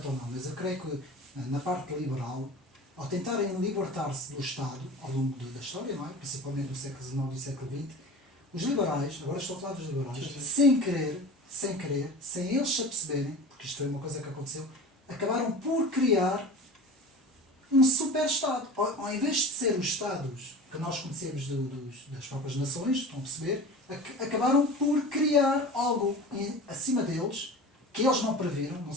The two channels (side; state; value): both; normal; correlation 0.36